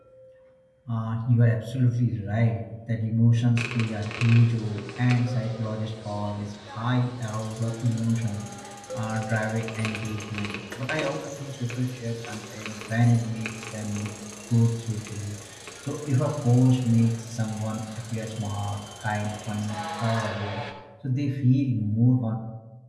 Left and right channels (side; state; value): both; identical; correlation 1.00